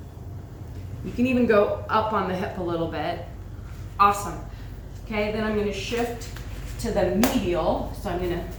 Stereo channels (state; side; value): identical; both; correlation 1.00